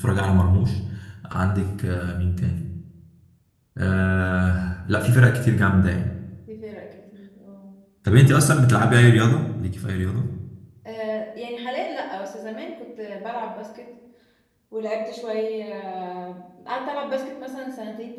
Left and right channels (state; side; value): identical; both; correlation 1.00